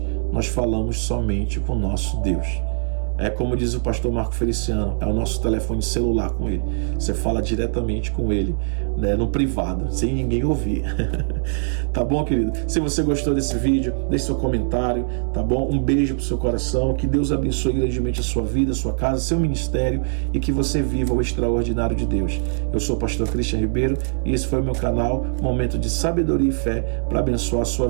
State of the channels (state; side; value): silent; left; digital silence